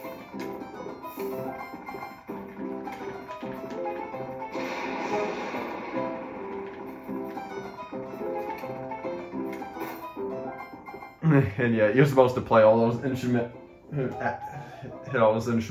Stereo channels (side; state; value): both; identical; correlation 1.00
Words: And yeah, you're supposed to play all those instruments, hit all those